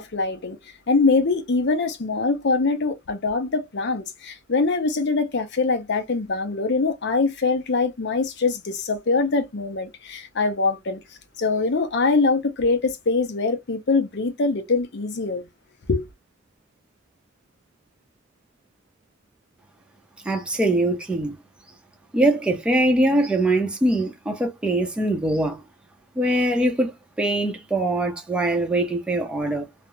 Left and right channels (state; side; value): normal; both; correlation 0.22